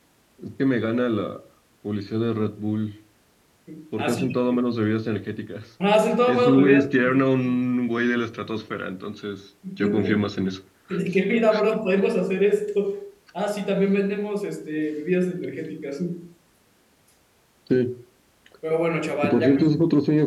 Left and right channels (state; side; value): identical; both; correlation 1.00